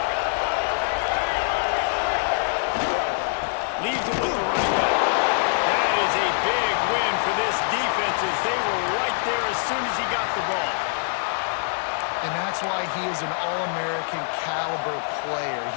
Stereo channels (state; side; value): silent; right; digital silence